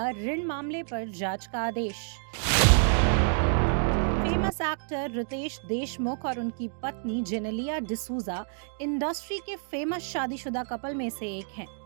ऋण मामले पर जांच का आदेश। फेमस एक्टर रितेश देशमुख और उनकी पत्नी जेनेलिया डिसूजा इंडस्ट्री के फेमस शादीशुदा कपल में से एक हैं।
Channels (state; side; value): silent; left; 59 dB below the other